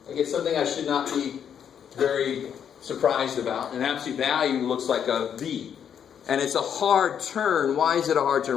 I get something I should not be very surprised about. An absolute value looks like a v. And it's a hard turn. Why is it a hard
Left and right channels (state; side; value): quieter; right; 8.4 dB